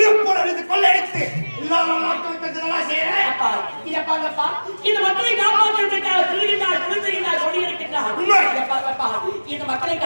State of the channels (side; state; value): both; inverted; correlation -1.00